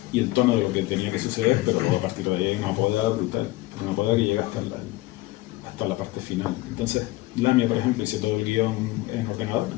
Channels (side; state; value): right; quieter; 19.0 dB